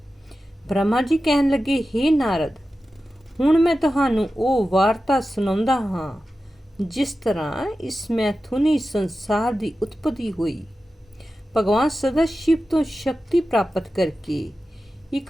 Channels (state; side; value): normal; both; correlation 0.93